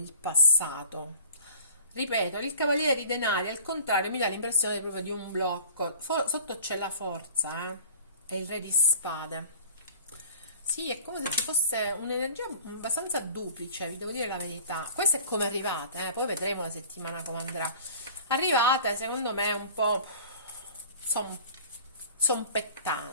passato. Ripeto, il cavaliere di denari al contrario mi dà l'impressione proprio di un blocco. Sotto c'è la forza, e il re di spade. Sì, è come se ci fosse un'energia abbastanza duplice, vi devo dire la verità. Questa è come arrivate, poi vedremo la settimana come andrà. Arrivate, secondo me, un po'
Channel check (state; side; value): inverted; both; correlation -0.45